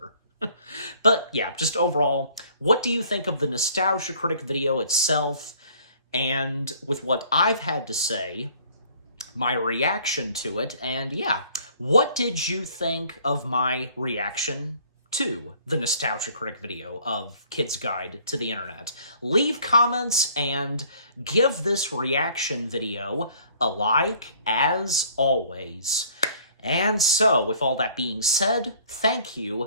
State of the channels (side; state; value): both; inverted; correlation -0.56